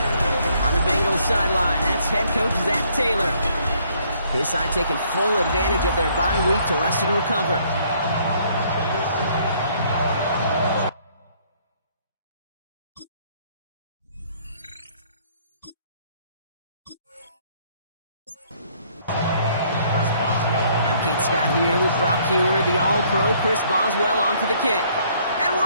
Sideline, that's head coach Zach Taylor. His side taking full advantage of their bye week to rest and recover. I'm Kate Scott here with Brock Hewer, the All-Pro Chris Boswell onto the kick. And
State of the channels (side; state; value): both; inverted; correlation -0.64